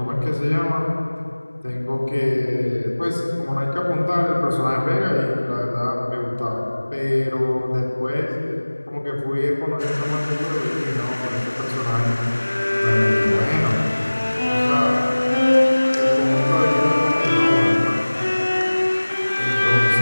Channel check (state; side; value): inverted; both; correlation -1.00